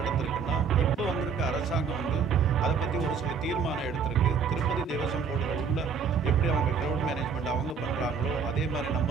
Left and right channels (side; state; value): left; quieter; 6.0 dB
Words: இப்போ வந்திருக்க அரசாங்கம் வந்து அதை பற்றி ஒரு சில தீர்மானம் எடுத்திருக்கு. திருப்பதி தேவசம் போர்டில் உள்ள எப்படி அவங்க க்ரௌட் மேனேஜ்மெண்ட் அவங்க பண்ணுறாங்களோ அதே மாதிரி